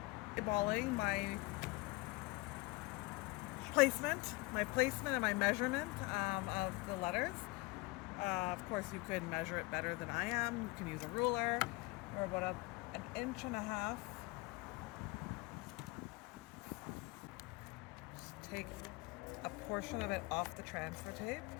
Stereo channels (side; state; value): right; quieter; 23.0 dB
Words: Eyeballing my placement and my measurement of the letters. Of course, you could measure it better than I am. You can use a ruler or about an inch and a half. Just take a portion of it off the transfer tape.